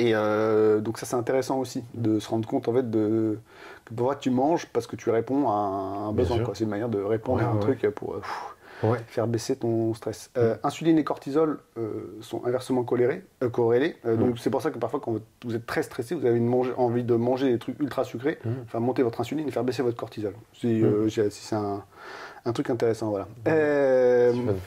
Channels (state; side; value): identical; both; correlation 1.00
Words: donc ça c'est intéressant aussi de se rendre compte en fait que parfois tu manges parce que tu réponds à un besoin, quoi. C'est une manière de répondre à un truc pour faire baisser ton stress. Insuline et cortisol sont inversement corrélés. Donc c'est pour ça que parfois quand vous êtes très stressé, vous avez envie de manger des trucs ultra sucrés, faire monter votre insuline et faire baisser votre cortisol. C'est un truc intéressant, voilà. Mais